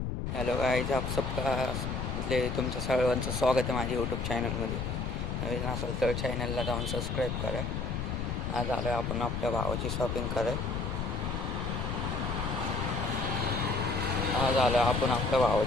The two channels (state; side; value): noise; left; rumble, 3 dB below the sound